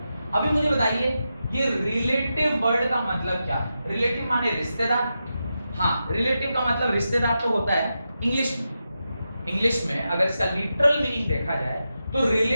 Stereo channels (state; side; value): inverted; both; correlation -0.89